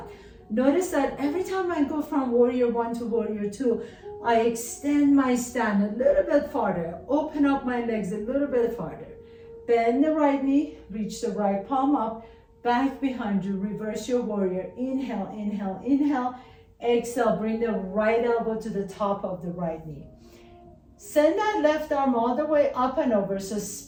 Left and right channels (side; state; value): both; identical; correlation 1.00